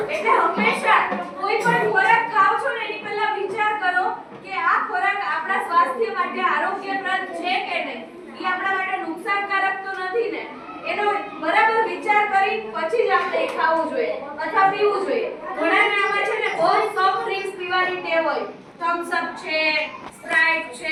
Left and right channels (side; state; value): both; identical; correlation 1.00